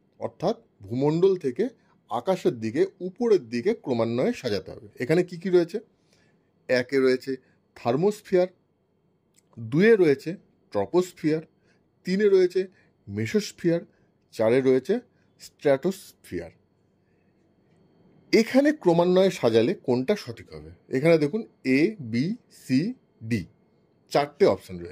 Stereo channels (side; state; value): both; identical; correlation 1.00